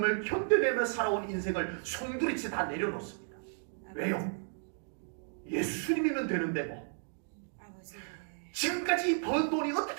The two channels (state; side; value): silent; left; digital silence